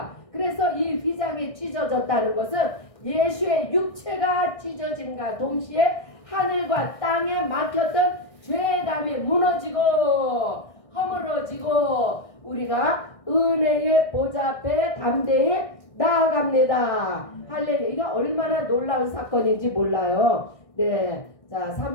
그래서 이 휘장이 찢어졌다는 것은 예수의 육체가 찢어짐과 동시에 하늘과 땅에 막혔던 죄의 담이 무너지고 허물어지고 우리가 은혜의 보좌 앞에 담대히 나아갑니다. 할렐루야. 이거 얼마나 놀라운 사건인지 몰라요. 네. 자,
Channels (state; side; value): late; right; 1.6 ms